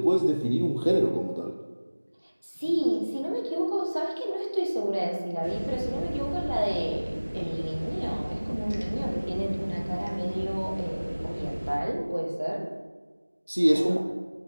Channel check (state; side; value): inverted; both; correlation -1.00